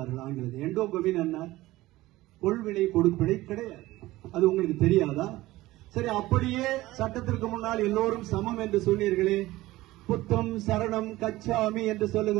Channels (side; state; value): left; quieter; 17.7 dB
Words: ஆங்கிலத்தில். எண்டோகமி என்ன? கொள்வினை கொடுப்பினை கிடையாது. அது உங்களுக்கு தெரியாதா? சரி, அப்படியே சட்டத்திற்கு முன்னால் எல்லோரும் சமம் என்று சொன்னீர்களே, புத்தம் சரணம் கச்சாமி என்று